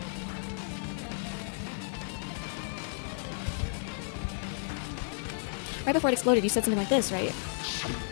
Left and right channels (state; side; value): silent; right; digital silence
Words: Right before it exploded, you said something like this, right?